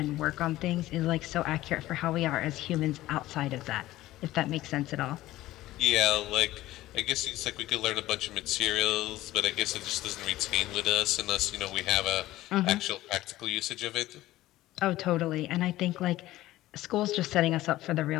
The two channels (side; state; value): right; quieter; 16.1 dB